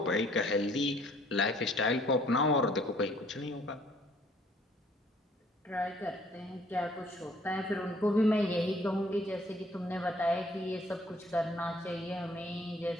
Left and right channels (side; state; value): both; normal; correlation 0.60